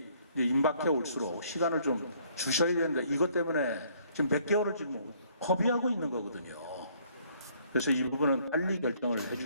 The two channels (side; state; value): both; inverted; correlation -0.63